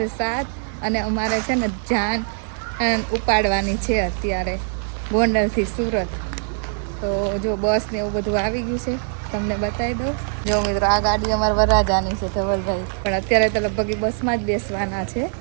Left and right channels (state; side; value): silent; left; 64 dB below the other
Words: 7 અને અમારે છે ને જાન ઉપાડવાની છે અત્યારે ગોંડલથી સુરત. તો જો બસ ને એવું બધું આવી ગયું છે, તમને બતાવી દઉં. જો મિત્રો, આ ગાડી અમારા વરરાજાની છે ધવલભાઈ, પણ અત્યારે તો લગભગ બસમાં જ બેસવાના છે,